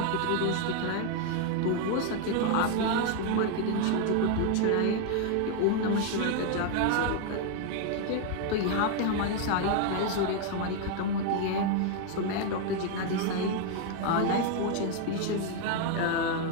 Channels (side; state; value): both; different; correlation 0.01